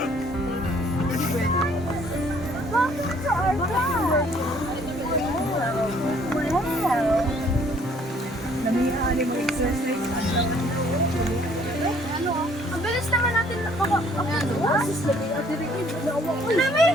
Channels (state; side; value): normal; both; correlation 0.60